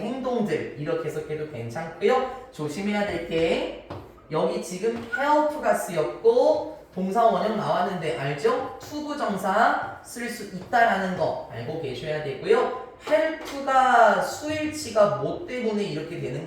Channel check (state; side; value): identical; both; correlation 1.00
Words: 행동들 이렇게 해석해도 괜찮고요. 조심해야 될 게 여기 지금 help가 쓰였고 동사 원형 나왔는데 알죠? 투부정사 쓸 수 있다라는 거 알고 계셔야 되고요. help가 수일치가 뭐 때문에 이렇게 되는